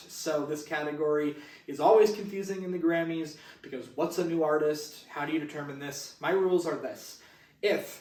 So this category is always confusing in the Grammys because what's a new artist? How do you determine this? My rules are this.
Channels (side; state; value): both; identical; correlation 1.00